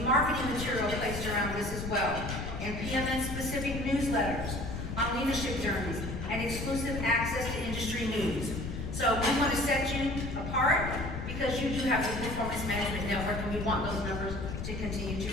marketing material placed around this as well, and PMN specific newsletters on leadership journeys and exclusive access to industry news. So we want to set you apart because you do have the Performance Management Network, and we want those numbers to continue to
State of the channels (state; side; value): noise; left; rumble, 5 dB below the sound